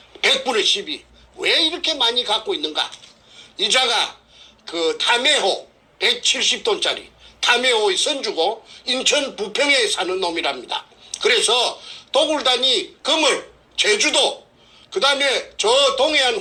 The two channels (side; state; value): both; identical; correlation 1.00